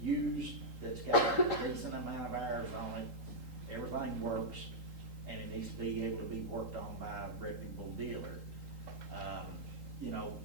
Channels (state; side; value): late; left; 3.8 ms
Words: used that's got a decent amount of hours on it, everything works, and it needs to be able to be worked on by a reputable dealer. You know,